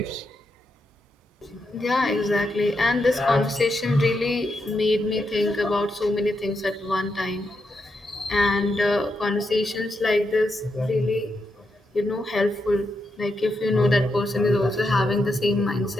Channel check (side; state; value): both; normal; correlation 0.84